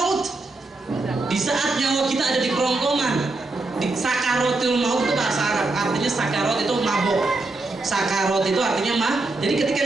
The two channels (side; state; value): left; quieter; 3.2 dB